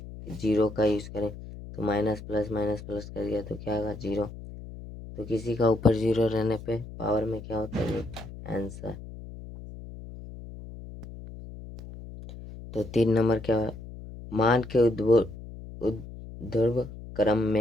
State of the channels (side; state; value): left; noise; hum, 13 dB below the sound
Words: 0 का यूज़ करें। तो माइनस प्लस कर दिया तो क्या होगा 0। तो किसी का ऊपर 0 रहने पे पावर में क्या होता है, ये आंसर। तो 3 नंबर क्या है, मान के ऊर्ध्व क्रम